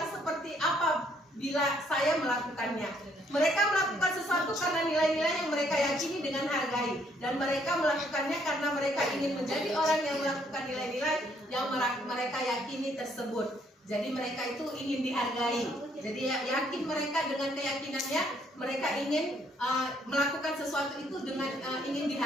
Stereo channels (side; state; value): both; normal; correlation 0.68